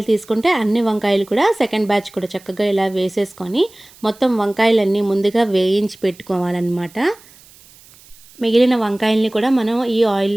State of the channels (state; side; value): noise; right; hiss, 25 dB below the sound